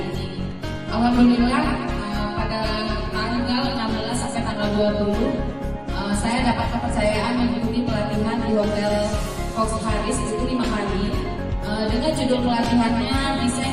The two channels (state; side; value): identical; both; correlation 1.00